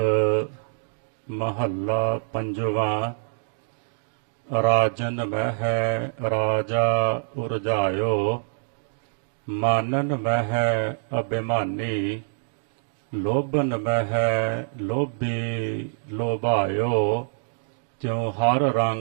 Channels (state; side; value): silent; left; digital silence